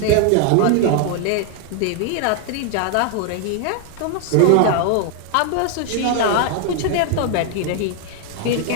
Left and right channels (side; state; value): both; different; correlation 0.00